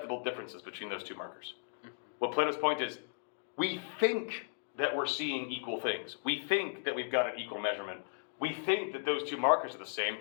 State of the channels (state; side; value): silent; right; digital silence